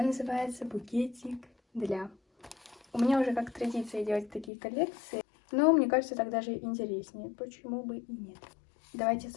называется «Букетик для». У меня уже как традиция делать такие коллекции, но мне кажется, так даже интереснее, почему бы и нет. Давайте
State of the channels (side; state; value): right; drops out; at 4.5 s